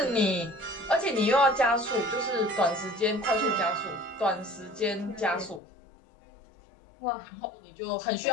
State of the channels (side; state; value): right; drops out; at 5.6 s